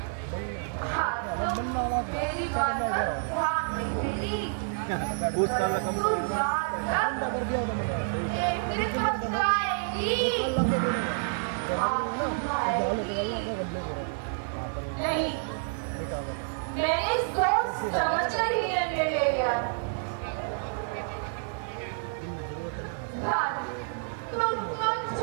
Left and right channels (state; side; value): silent; left; 59 dB below the other